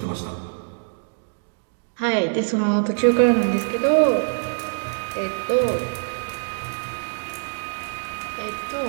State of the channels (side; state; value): left; silent; digital silence